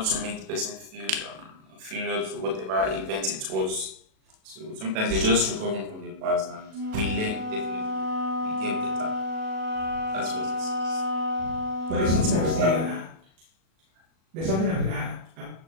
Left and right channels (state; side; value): late; left; 37 ms